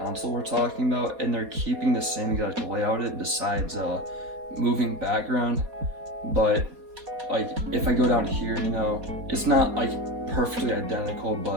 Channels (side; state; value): left; late; 4.2 ms